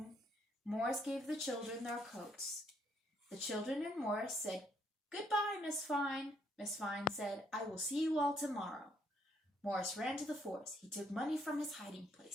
Morris gave the children their coats. The children and Morris said, goodbye, Miss Fine. Miss Fine said, I will see you all tomorrow. Morris ran to the forest. He took money from his hiding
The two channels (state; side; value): normal; both; correlation 0.70